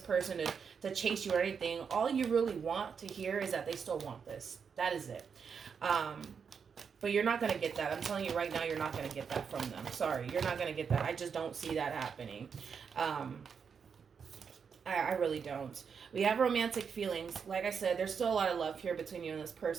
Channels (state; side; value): quieter; left; 6.4 dB